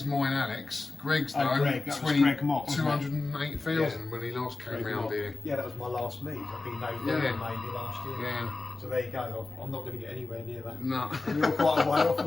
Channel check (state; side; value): quieter; right; 3.5 dB